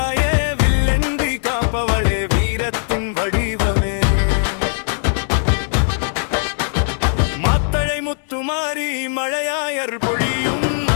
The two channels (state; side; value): silent; right; digital silence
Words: வில்லென்றி காப்பவளே வீரத்தின் வடிவமே. மாத்தளை முத்துமாரி மழையாய் அருள் பொழியும்